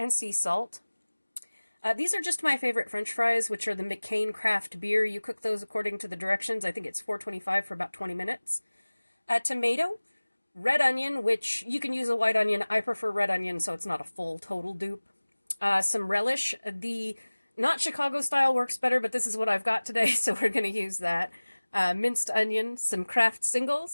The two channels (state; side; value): inverted; both; correlation -1.00